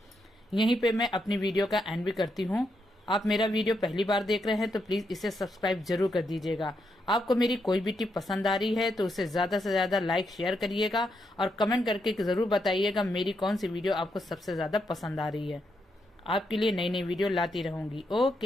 यहीं पे मैं अपनी वीडियो का एंड भी करती हूँ। आप मेरा वीडियो पहली बार देख रहे हैं तो प्लीज इसे सब्सक्राइब जरूर कर दीजिएगा। आपको मेरी कोई भी टिप पसंद आ रही है तो उसे ज्यादा से ज्यादा लाइक शेयर करिएगा और कमेंट करके जरूर बताइएगा मेरी कौन सी वीडियो आपको सबसे ज्यादा पसंद आ रही है। आपके लिए नई नई वीडियो लाती रहूंगी।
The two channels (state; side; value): normal; both; correlation 0.81